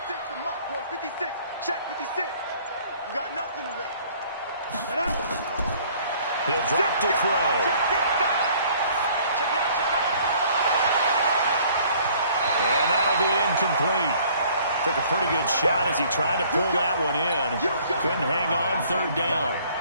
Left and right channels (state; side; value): inverted; both; correlation -0.57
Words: the mic, boys. 56. Check 56. You got nothing to win. He'll drop to throw. And that'll be incomplete. Took a pretty good shot as he tried to pull that one in. Couldn't hang on 3rd down.